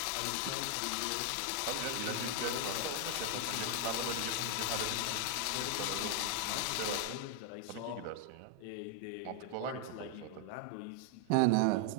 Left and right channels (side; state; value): both; different; correlation 0.00